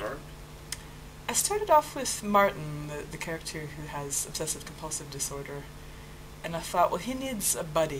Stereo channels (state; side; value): identical; both; correlation 1.00